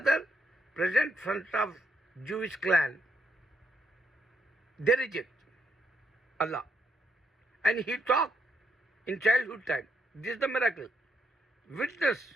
present front of Jewish clan. They reject Allah. And he talked in childhood time. This is the miracle. Witness,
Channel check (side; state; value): both; normal; correlation 0.76